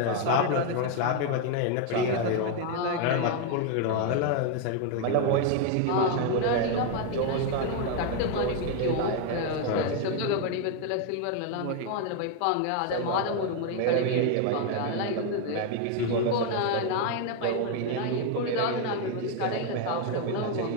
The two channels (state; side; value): different; both; correlation 0.01